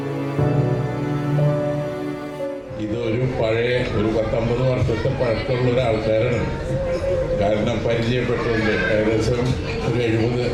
പഴയ ഒരു 10-50 വർഷത്തെ പഴക്കമുള്ള ഒരാൾക്കാരാണ്. കാരണം പരിചയപ്പെട്ടുകൊണ്ട് ഏകദേശം ഒരു 70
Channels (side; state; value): both; identical; correlation 1.00